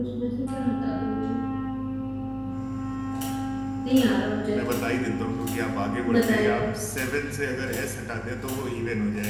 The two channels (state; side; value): identical; both; correlation 1.00